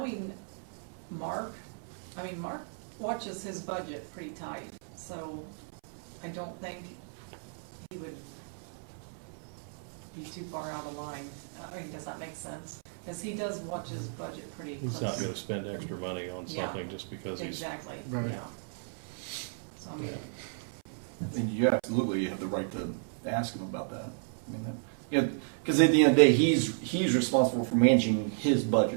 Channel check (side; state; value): left; silent; 56 dB below the other